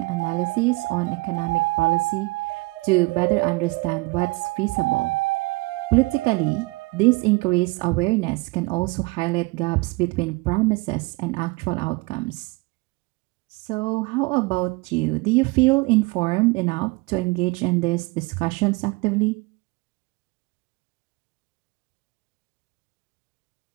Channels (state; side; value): quieter; left; 24.9 dB